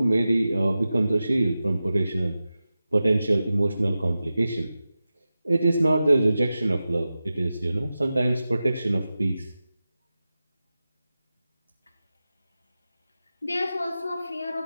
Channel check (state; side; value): inverted; both; correlation -0.93